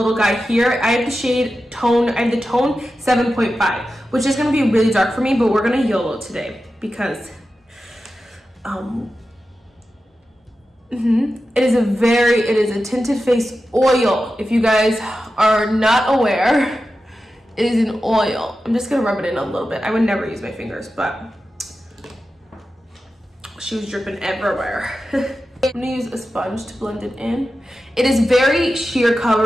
guy here. I have the shade tone, I have the tone 7.5, which is going to be really dark for me, but we're going to YOLO today because it is a tinted face oil. If you guys are not aware, it is an oil. I'm just going to rub it in a little bit. I would never use my fingers, but she was dripping everywhere. I'm gonna use a sponge to blend it in. It is very sheer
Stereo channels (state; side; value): normal; both; correlation 0.92